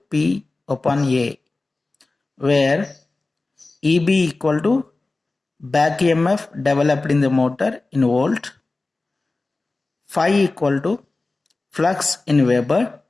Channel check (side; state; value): right; quieter; 3.3 dB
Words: P upon A, where EB equal to back EMF developed in the motor in volt, phi equal to flux in Weber,